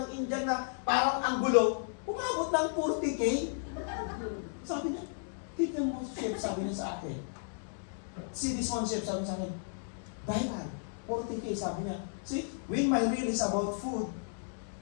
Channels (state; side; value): silent; right; digital silence